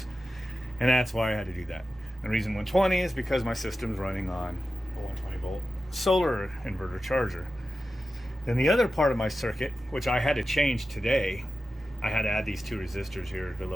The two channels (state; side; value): normal; both; correlation 0.93